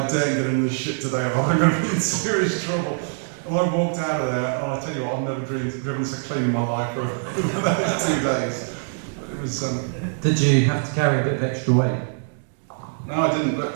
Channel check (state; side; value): silent; left; digital silence